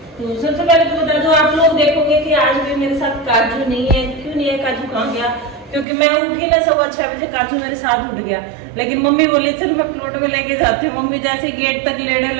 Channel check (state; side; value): drops out; left; at 5.9 s